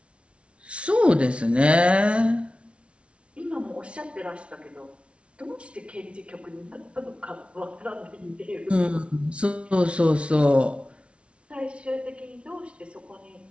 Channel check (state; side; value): late; left; 0.060 ms